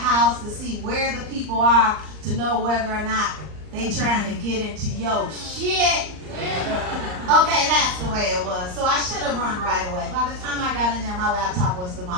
to see where the people are to know whether or not they trying to get into your shit? Okay, that's the way it was. So I should have run right away. By the time I got in there, my laptop was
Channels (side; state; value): left; late; 39 ms